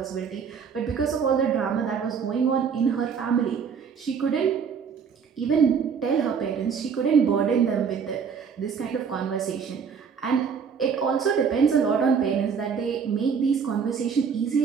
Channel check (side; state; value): left; quieter; 6.4 dB